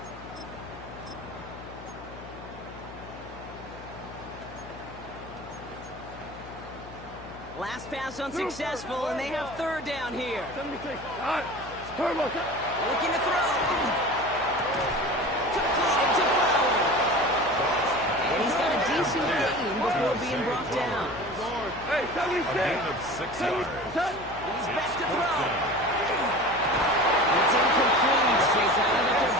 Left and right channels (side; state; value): left; noise; hum, 16 dB below the sound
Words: Last pass unsuccessful, and they have third down here. 76. All right. Turbo. Looking to throw. Completed to Fowler. And he's got a decent gain before being brought down. Hey, 76. He's back to throw. It's incomplete. They found their